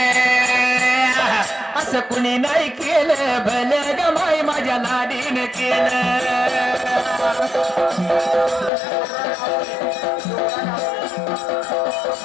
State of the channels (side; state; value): right; drops out; at 8.7 s